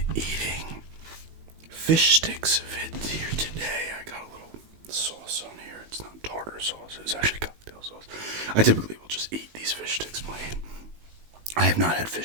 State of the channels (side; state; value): left; late; 19 ms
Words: eating fish sticks vid here today. I got a little sauce on here. It's not tartar sauce. It's actually cocktail sauce. I typically will just eat these fish sticks plain. I have not had